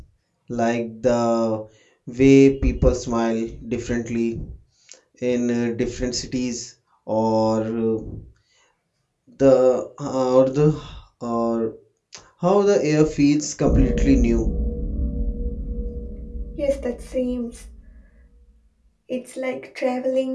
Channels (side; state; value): both; identical; correlation 1.00